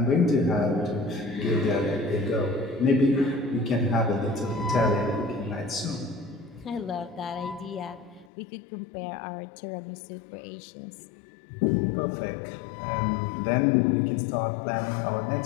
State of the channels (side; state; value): right; drops out; at 8.3 s